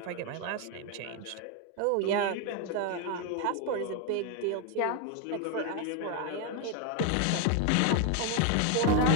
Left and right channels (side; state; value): both; different; correlation 0.01